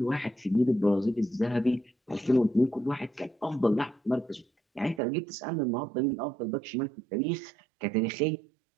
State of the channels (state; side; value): drops out; left; at 5.0 s